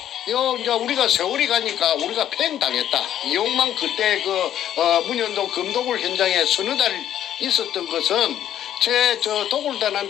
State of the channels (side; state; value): right; quieter; 11.0 dB